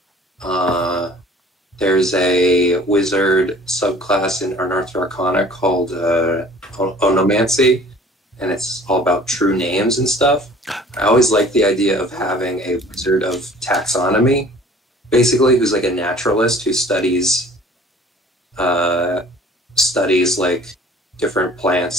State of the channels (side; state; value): both; normal; correlation 0.49